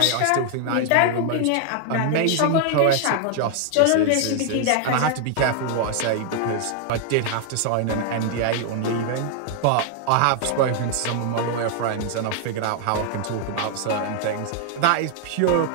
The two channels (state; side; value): different; both; correlation 0.00